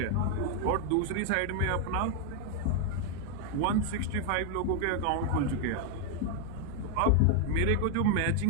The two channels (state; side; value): different; both; correlation 0.00